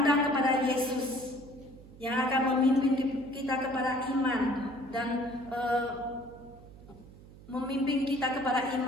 kepada Yesus yang akan memimpin kita kepada iman dan memimpin kita kepada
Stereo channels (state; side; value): noise; right; hum, 20 dB below the sound